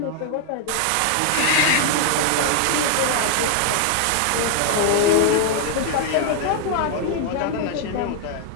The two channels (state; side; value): different; both; correlation 0.00